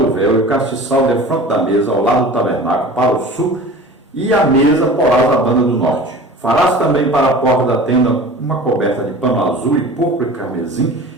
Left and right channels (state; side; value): normal; both; correlation 0.39